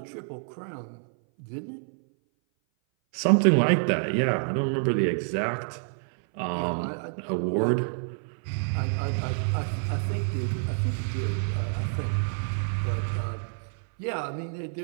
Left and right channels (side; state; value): left; silent; 58 dB below the other